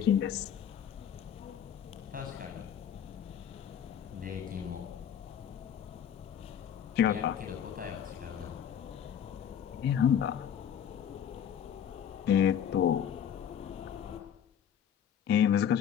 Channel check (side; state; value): right; quieter; 8.9 dB